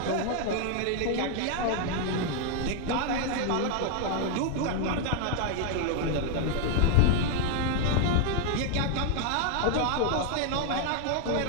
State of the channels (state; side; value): different; both; correlation 0.00